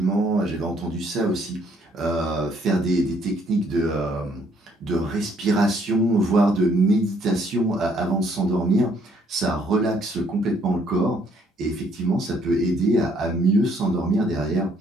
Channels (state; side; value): normal; both; correlation 0.66